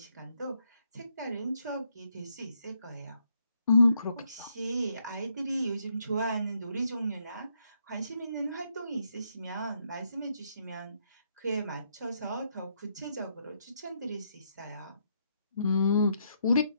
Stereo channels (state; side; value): inverted; both; correlation -0.76